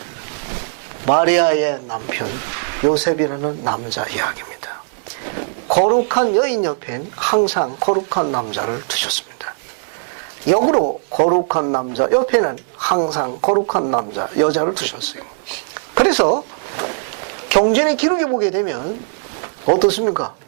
마리아의 남편 요셉이라는 남자 이야기입니다. 거룩한 여인 옆엔 항상 거룩한 남자를 두셨습니다. 역으로 거룩한 남자 옆에는 항상 거룩한 남자, 여자를 두셨어요. 그래서 경전의 기록에 보게 되면 어떻습니까?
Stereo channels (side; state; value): left; silent; digital silence